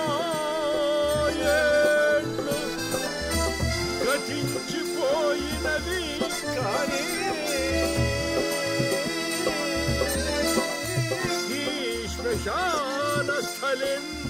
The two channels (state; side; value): identical; both; correlation 1.00